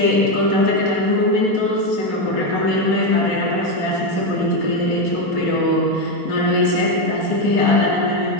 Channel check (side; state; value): left; late; 4.3 ms